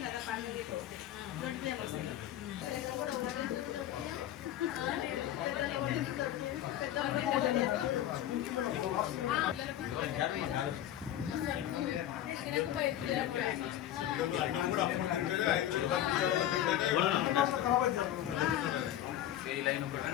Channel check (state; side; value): quieter; right; 12.0 dB